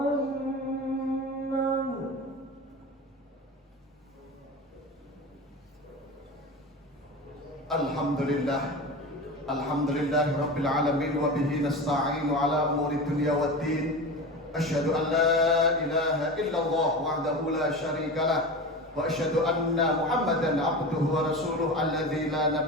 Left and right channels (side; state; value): both; normal; correlation 0.28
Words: Alhamdulillah Rabbil Alamin wa bihi nasta'inu ala umuri dunya waddin. Asyhadu an la ilaha illallah wahdahu la syarika lah wa asyhadu anna Muhammadan abduhu wa rasuluh alladzi la